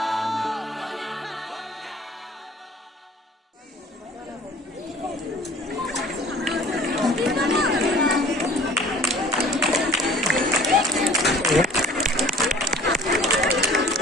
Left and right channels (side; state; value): both; normal; correlation 0.48